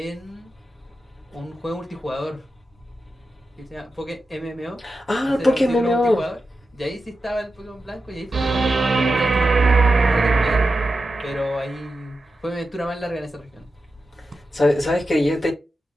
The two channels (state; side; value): normal; both; correlation 0.91